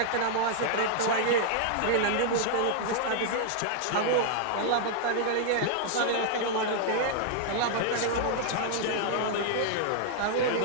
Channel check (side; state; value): both; different; correlation -0.01